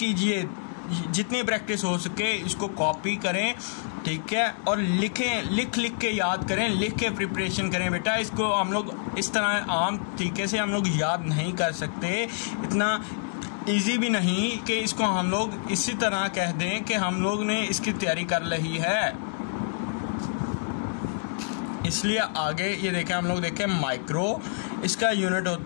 जितनी प्रैक्टिस हो सके इसको कॉपी करें। ठीक है, और लिख के याद करें, लिख के प्रिपरेशन करें बेटा। इसको हम लोग इस तरह आम तरीके से हम लोग याद नहीं कर सकते, इतना इजी भी नहीं कि इसको हम लोग इसी तरह कह दें कि हम लोग ने इसकी तैयारी कर ली है। इसलिए आगे ये देखें, हम लोग देखें माइक्रो, इसका यूनिट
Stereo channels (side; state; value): right; silent; digital silence